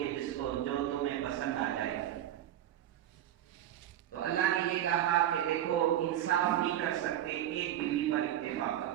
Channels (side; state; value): left; quieter; 12.0 dB